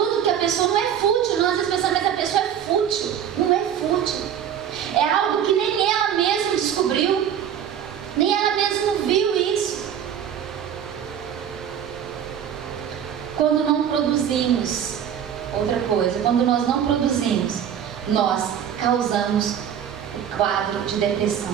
que a pessoa não é fútil, não, às vezes pensando, mas a pessoa é fútil. Não é fútil. É algo que nem ela mesma descobriu. Nem ela mesma viu isso. Quando não produzimos, outra coisa, quando nós não produzimos, nós causamos o quadro de depressão.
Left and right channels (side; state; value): left; quieter; 9.1 dB